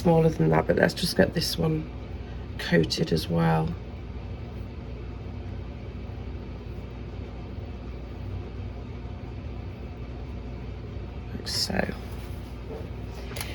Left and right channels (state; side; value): identical; both; correlation 1.00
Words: than that, but let's just get this one coated as well. Like so.